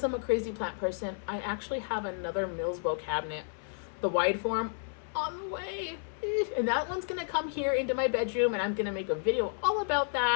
I'm a crazy plant person, I actually have another Millsbo cabinet, the wide form, on the way. And that one's gonna come here into my bedroom, and I'm gonna make a video all about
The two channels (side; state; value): right; silent; 57 dB below the other